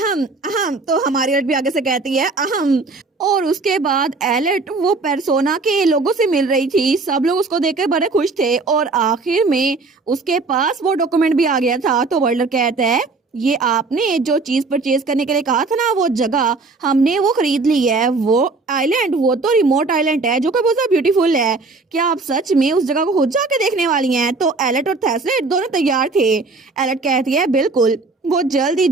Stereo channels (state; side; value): quieter; left; 3.8 dB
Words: अहम। तो हमारी लड़की आगे से कहती है, अहम। और उसके बाद एलेट वो पेर्सोना के लोगों से मिल रही थी। सब लोग उसको देखकर बड़े खुश थे और आखिर में उसके पास वो डॉक्यूमेंट भी आ गया था। तो वर्ल्डर कहता है, ये आपने जो चीज परचेज करने के लिए कहा था ना, वो जगह हमने वो खरीद ली है। वो आइलैंड, वो तो रिमोट आइलैंड है जो कि बहुत ब्यूटीफुल है। क्या आप सच में उस जगह को खुद जाके देखने वाली हैं? तो एलेट और थेस्लेट दोनों तैयार थे। एलेट कहती है, बिल्कुल, वो जल्द ही